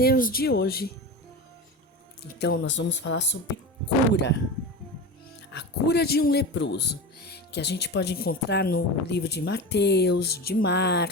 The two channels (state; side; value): normal; both; correlation 0.27